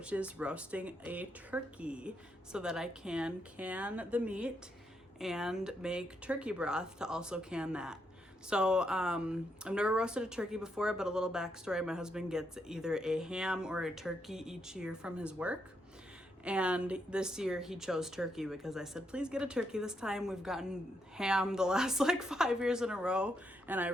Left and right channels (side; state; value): both; normal; correlation 0.79